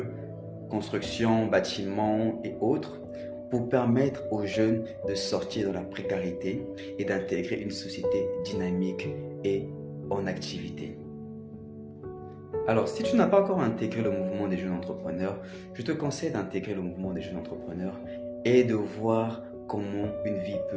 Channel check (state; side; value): identical; both; correlation 1.00